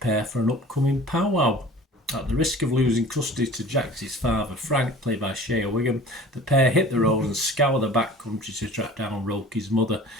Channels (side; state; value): both; normal; correlation 0.44